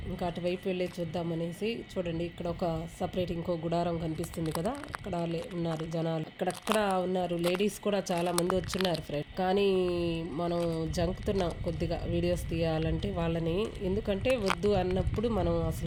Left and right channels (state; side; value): identical; both; correlation 1.00